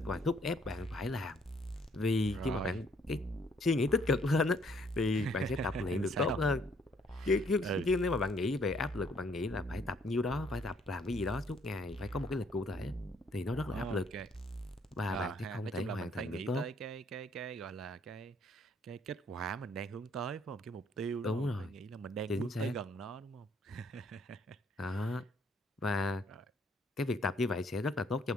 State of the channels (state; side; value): normal; both; correlation 0.65